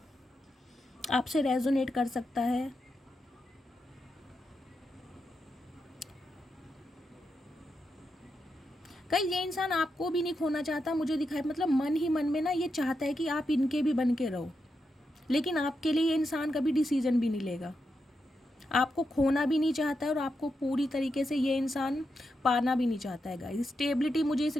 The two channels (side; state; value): both; normal; correlation 0.85